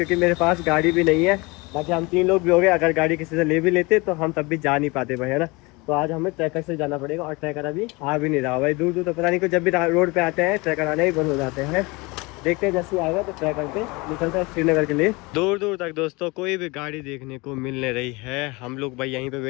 मेरे पास गाड़ी भी नहीं है। बाकी हम 3 लोग भी हो गए, अगर गाड़ी किसी से ले भी लेते तो हम तब भी जा नहीं पाते भाई, है ना। तो आज हमें ट्रैकर से जाना पड़ेगा और ट्रैकर अभी आ भी नहीं रहा भाई। दूर दूर तो पता नहीं को, जब भी रोड पे आते हैं ट्रैकर आने ही बंद हो जाते हैं। देखते हैं जैसे आएगा तो ट्रैकर पे निकलता है श्रीनगर के लिए। दूर दूर तक दोस्तों कोई भी गाड़ी देखने को मिल नहीं रही है। हम लोग भाई यहीं पे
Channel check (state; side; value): quieter; right; 25.4 dB